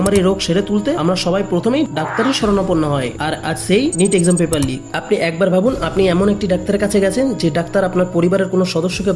রোগ সেরে তুলতে আমরা সবাই প্রথমেই ডাক্তারের শরণাপন্ন হয়। আর আজ সেই নিট এক্সাম পেপার লিক। আপনি একবার ভাবুন, আপনি এমন একটি ডাক্তারের কাছে গেছেন যে ডাক্তার আপনার পরিবারের কোনো সদস্যকে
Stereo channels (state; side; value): identical; both; correlation 1.00